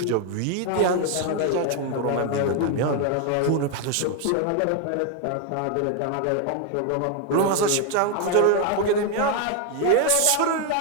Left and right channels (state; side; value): different; both; correlation 0.01